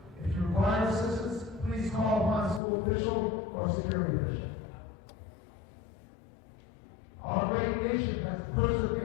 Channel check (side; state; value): right; drops out; at 2.6 s